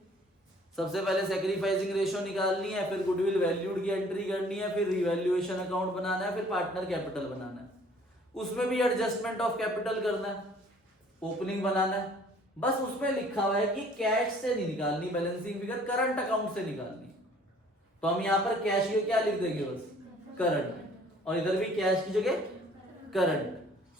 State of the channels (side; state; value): both; normal; correlation 0.55